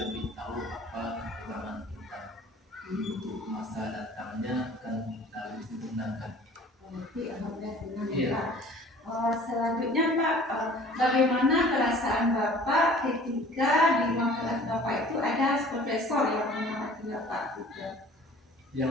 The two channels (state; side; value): normal; both; correlation 0.48